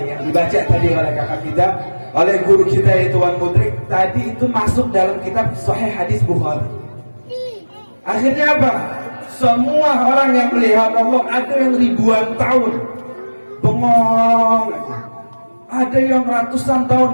yang dibaca tadi oleh kakak kita, oleh guru kita itu Wan Mudrik. Tadi itu masuk dalam kitab Sahih Hadis Bukhari. Akhirnya apa? Semua orang yang melihat Allah, ada yang ribuan tahun bengong. Ada yang ratusan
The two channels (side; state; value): both; inverted; correlation -1.00